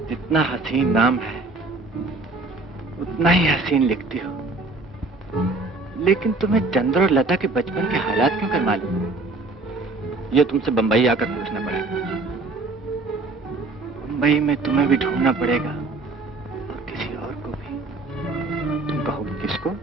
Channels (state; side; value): quieter; left; 3.4 dB